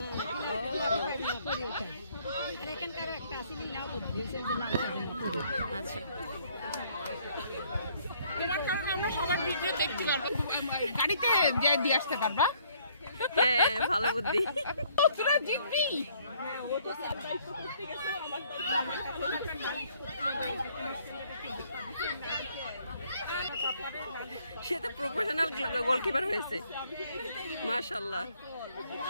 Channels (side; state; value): both; inverted; correlation -0.64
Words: আর এখানকার একটা আসলে নাও বুঝছেন যে নাম। আচ্ছা তোমার কারণে আমরা সবার ভিডিও দেখতে পারবো, গাড়িতে দিয়ে আসতে পারবা। হ্যাঁ ভালো বুদ্ধি। তোরা জিতবি। ও তো সারপ্রাইজ করতে গেছে আমার সে তো প্রফেশনাল গোলকিপার হয়েছে, মাশাআল্লাহ।